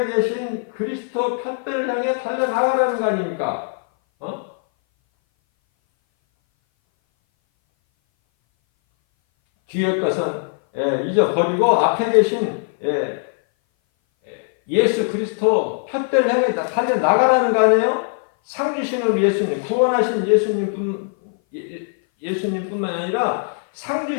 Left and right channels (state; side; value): silent; right; 59 dB below the other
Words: 계신 그리스도 푯배를 향해 달려나가라는 거 아닙니까? 뒤의 것은 잊어버리고 앞에 계신 예수 그리스도 푯배를 향해 달려나가라는 거 아니에요? 상 주시는 우리 예수님, 구원하신 예수님뿐만 아니라 상